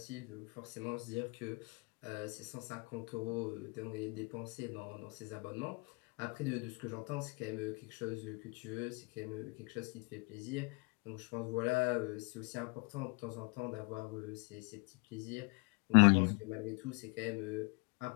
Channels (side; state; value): right; quieter; 30.3 dB